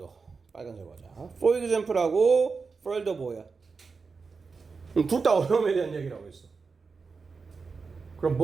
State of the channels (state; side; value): quieter; left; 4.8 dB